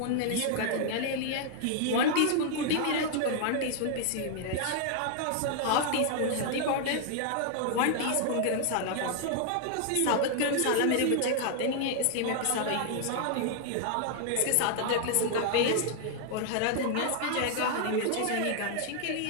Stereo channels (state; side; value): different; both; correlation 0.00